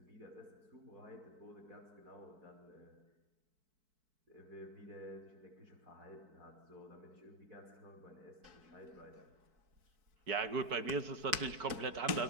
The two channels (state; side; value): late; left; 4.6 ms